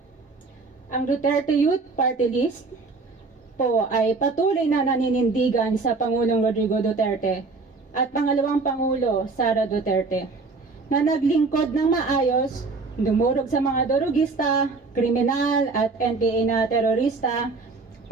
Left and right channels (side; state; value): left; quieter; 4.0 dB